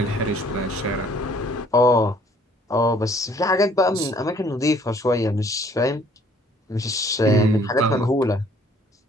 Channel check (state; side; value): normal; both; correlation 0.59